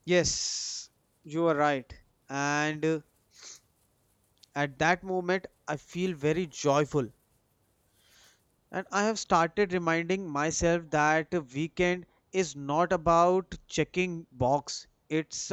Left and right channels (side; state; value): both; identical; correlation 1.00